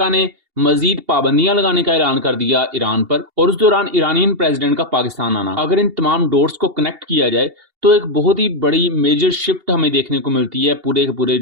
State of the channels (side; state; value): left; late; 2.8 ms